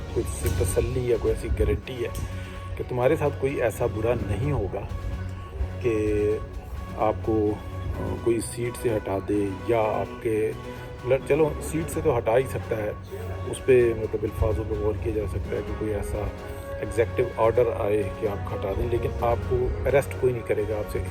कुछ तसल्ली या कोई ऐसी गारंटी है कि तुम्हारे साथ कोई ऐसा बुरा नहीं होगा कि आपको कोई सीट से हटा दे, या आपके चलो सीट से तो हटा ही सकता है, उस पर मतलब अल्फाजों पर गौर किया जा सकता है कि कोई ऐसा एग्जेक्टिव ऑर्डर आए कि आप हटा दें, लेकिन आपको अरेस्ट कोई नहीं करेगा, आपसे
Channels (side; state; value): both; identical; correlation 1.00